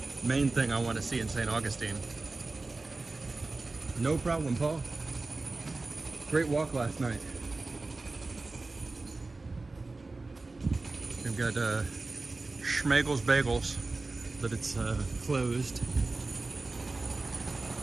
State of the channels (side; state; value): left; quieter; 3.4 dB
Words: main thing I want to see in St. Augustine. No problem, Paul. Great walk last night. We've got Schmegel's Bagels, but it's closed.